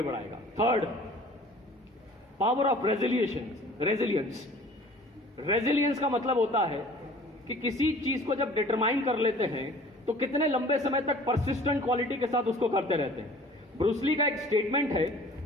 बढ़ाएगा। Third, power of resilience. Resilience का मतलब होता है कि किसी चीज को जब डिटरमाइन कर लेते हैं तो कितने लंबे समय तक परसिस्टेंट क्वालिटी के साथ उसको करते रहते हैं। ब्रूस ली का एक स्टेटमेंट है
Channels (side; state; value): both; normal; correlation 0.48